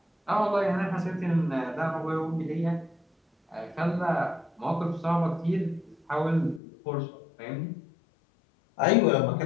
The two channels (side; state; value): right; drops out; at 6.6 s